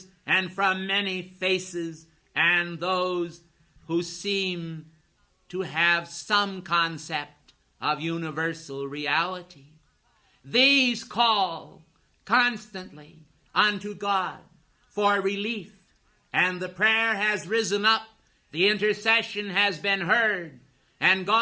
and from many faces, and those who seem to have some concept of universal reality. These call constantly unto God for relief, and the prayer has risen up, the intercession has been heard, and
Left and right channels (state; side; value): identical; both; correlation 1.00